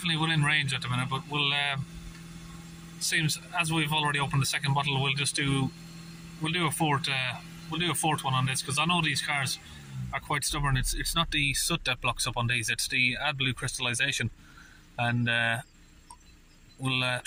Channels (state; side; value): identical; both; correlation 1.00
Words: within range at the minute, but we'll seems as we've already opened the second bottle, we'll do a fourth one on this, because I know these cars are quite stubborn. It's not the soot that blocks up on these, it's the AdBlue crystallization, and we'll